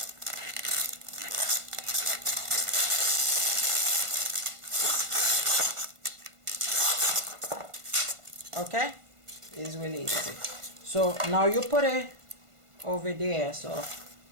Okay, it's really easy. So now you put it over there. So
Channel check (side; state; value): left; late; 1.5 ms